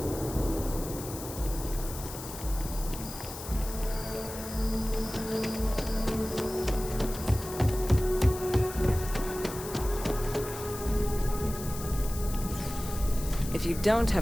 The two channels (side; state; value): left; noise; hiss, 11 dB below the sound